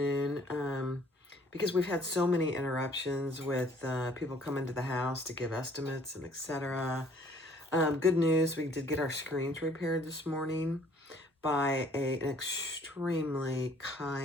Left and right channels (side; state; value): both; normal; correlation 0.58